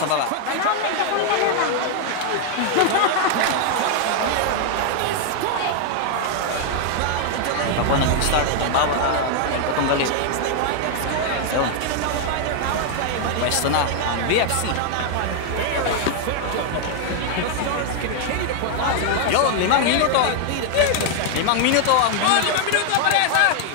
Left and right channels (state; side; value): different; both; correlation 0.00